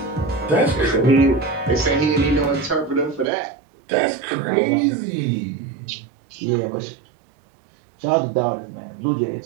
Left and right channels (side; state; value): left; drops out; at 3.2 s